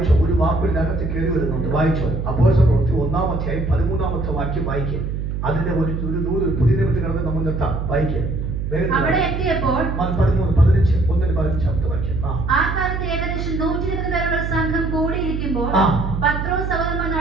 ഒരു വാക്കിനകത്ത് കയറി വരുന്നുണ്ട്. വായിച്ചോ, അപ്പോസ്തല പ്രവൃത്തി 1-ാം അധ്യായം 13-ാമത്തെ വാക്യം വായിക്കുക. അതിന്റെ ഒരു പുതിയ നിമിത്തം കിടന്ന് നമ്മൾ നിർത്താം. വായിക്കുക. അവിടെ എത്തിയപ്പോൾ 13-15 വാക്യം. ആ കാലത്ത് ഏകദേശം 120 പേരുള്ള സംഘം കൂടിയിരിക്കുമ്പോൾ പത്രോസ് സഹോദരന്മാർ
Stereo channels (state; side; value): noise; right; hum, 3 dB below the sound